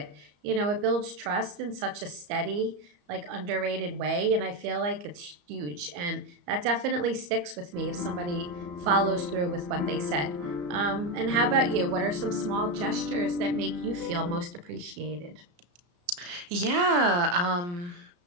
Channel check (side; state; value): left; late; 34 ms